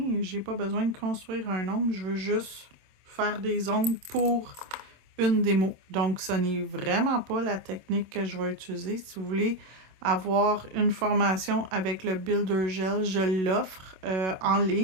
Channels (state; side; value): late; left; 26 ms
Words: J'ai pas besoin de construire un ongle. Je veux juste faire des ongles pour une démo. Donc, ce n'est vraiment pas la technique que je vais utiliser. Si vous voulez avoir une formation avec le Builder Gel, je l'offre en